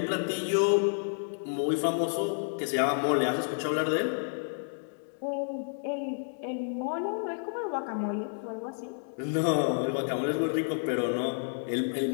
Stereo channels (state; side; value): silent; right; digital silence